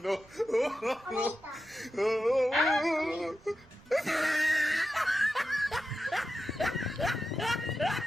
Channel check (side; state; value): right; noise; rumble, 27 dB below the sound